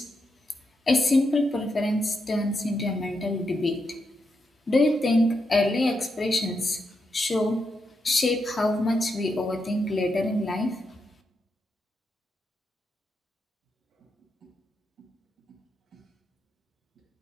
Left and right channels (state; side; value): normal; both; correlation 0.84